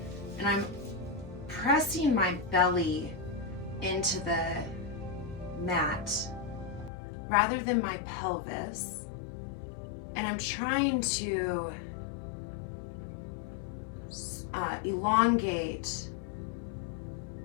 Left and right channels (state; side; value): drops out; right; at 6.9 s